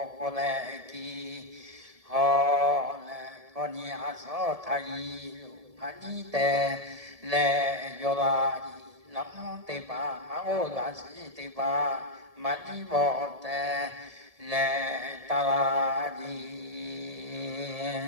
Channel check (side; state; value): left; late; 1.7 ms